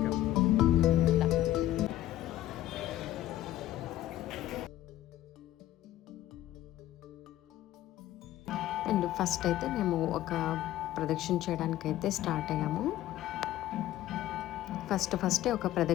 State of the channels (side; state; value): right; quieter; 13.9 dB